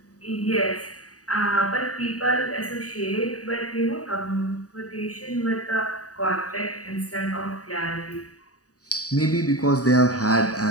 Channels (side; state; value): right; late; 0.67 ms